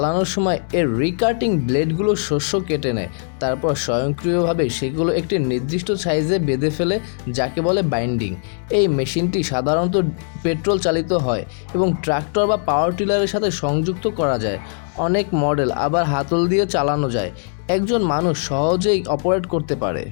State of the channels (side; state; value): right; silent; 66 dB below the other